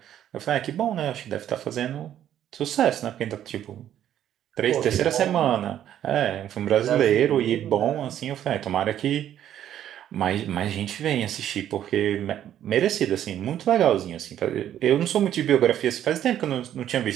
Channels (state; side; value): quieter; left; 10.9 dB